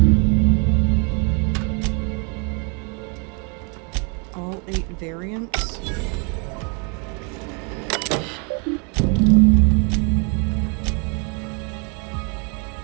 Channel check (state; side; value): quieter; left; 35.4 dB